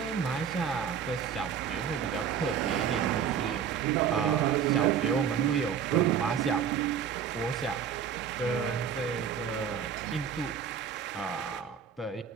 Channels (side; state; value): left; quieter; 7.9 dB